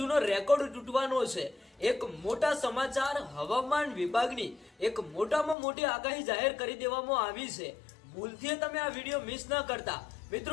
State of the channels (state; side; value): drops out; right; at 5.6 s